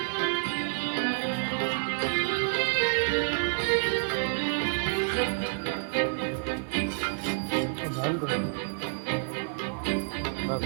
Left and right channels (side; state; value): left; silent; 57 dB below the other